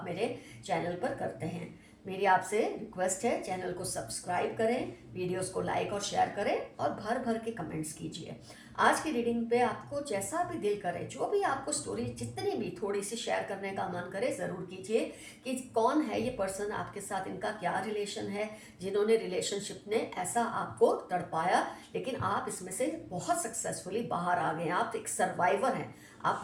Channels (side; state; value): both; identical; correlation 1.00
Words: मेरे चैनल पर करते हैं। मेरी आपसे रिक्वेस्ट है, चैनल को सब्सक्राइब करें, वीडियोस को लाइक और शेयर करें और भर भर के कमेंट्स कीजिए। आज की रीडिंग पे आपको जैसा भी दिल करे, जो भी आपको स्टोरी जितनी भी थोड़ी सी शेयर करने का मन करे, ज़रूर कीजिए कि कौन है ये पर्सन आपके साथ, इनका क्या रिलेशन है, जिन्होंने रिलेशनशिप ने ऐसा आपको तड़पाया, लेकिन आप इसमें से बहुत सक्सेसफुली बाहर आ गए। आप एक सर्वाइवर हैं,